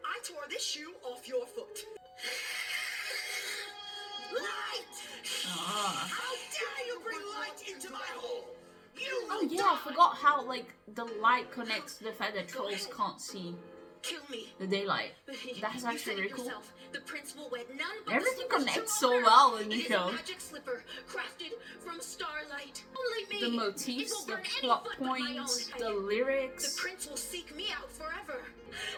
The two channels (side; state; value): both; identical; correlation 1.00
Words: I tore this shoe off your foot. Light! How dare you bring light into my hole? You Oh yeah, I forgot how like the light connects to the fact that trolls can't see kill me. the daylight. You That's said actually it really cool. yourself. The prince will wed none but Everything the slipper's connects true so owner. well in the It is show. a magic slipper crafted from starlight. Only me. The It motifs, will the burn any plot foot but my points, own. the The lyrics. prince will seek me out forever.